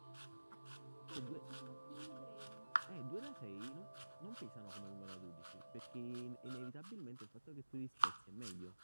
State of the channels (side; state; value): both; inverted; correlation -1.00